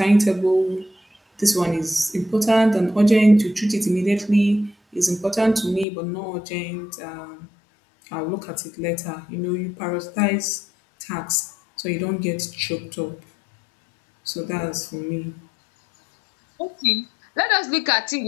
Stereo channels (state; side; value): drops out; right; at 5.9 s